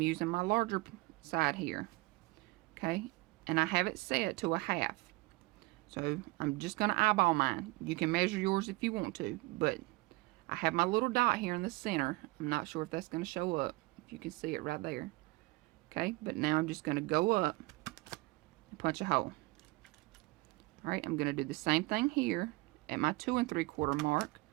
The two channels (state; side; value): quieter; left; 22.8 dB